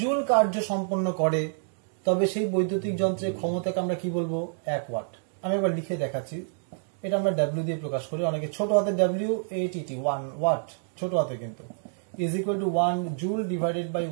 জুল কার্য সম্পন্ন করে, তবে সেই বৈদ্যুতিক যন্ত্রের ক্ষমতাকে আমরা কি বলবো, 1 ওয়াট। আমি একবার লিখে দেখাচ্ছি, এটা আমরা ডাব্লিউ দিয়ে প্রকাশ করি, অনেকে ছোট হাতে ডাব্লিউ এটিটি 1 ওয়াট ছোট হাতে কিন্তু is equal to 1 joule divided by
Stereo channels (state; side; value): silent; left; digital silence